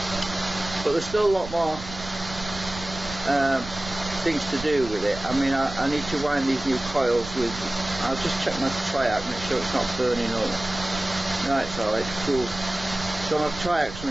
But there's still a lot more things to do with it. I mean, I need to wind these new coils with. I'll just check my triac, make sure it's not burning up. No, it's alright, cool. So my triac's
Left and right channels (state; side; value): noise; right; rumble, 12 dB below the sound